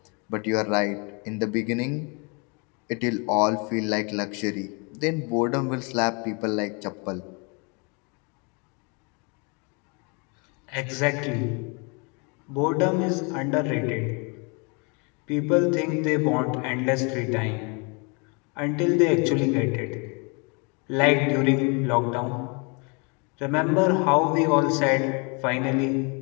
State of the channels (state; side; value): quieter; right; 32.9 dB